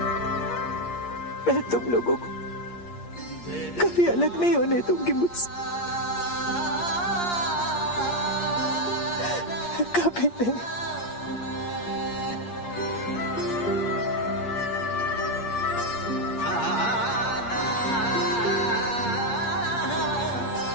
मैं तुम लोगों को कभी अलग नहीं होने दूंगी मुझसे, कभी नहीं।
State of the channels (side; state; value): right; late; 8.6 ms